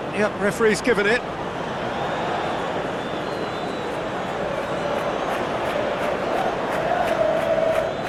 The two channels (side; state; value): both; identical; correlation 1.00